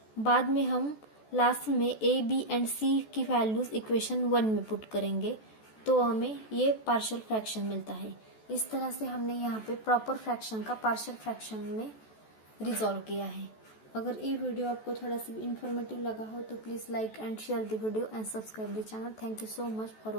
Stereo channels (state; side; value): late; right; 14 ms